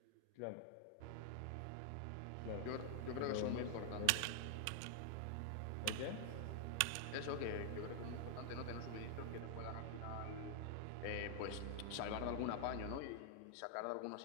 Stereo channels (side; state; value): both; different; correlation 0.00